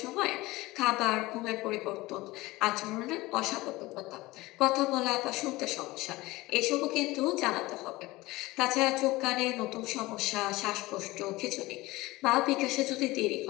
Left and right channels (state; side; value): quieter; right; 20.0 dB